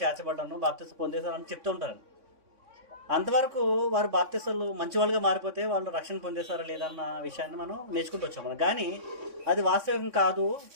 చేర్చబడ్డాను, బాప్తిసం పొందేశాను అని చెప్తూ ఉంటారు. అంతవరకు వారు బాప్తిసాలు మంచి వాళ్ళుగా మారిపోతే వాళ్ళు రక్షణ పొందేశారా లేదన్న విషయాన్ని మనం నేర్చుకుంటూ వచ్చాం మనం. కానీ అది వాస్తవం కాదు.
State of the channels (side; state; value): left; late; 3.6 ms